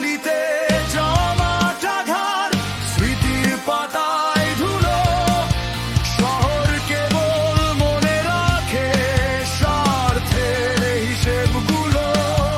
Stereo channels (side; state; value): both; identical; correlation 1.00